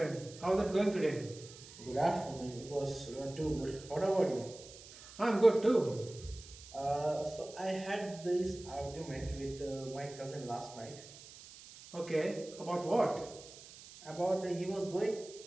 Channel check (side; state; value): right; noise; hiss, 17 dB below the sound